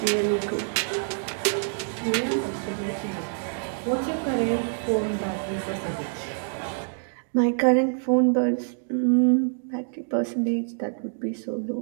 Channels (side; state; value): left; silent; digital silence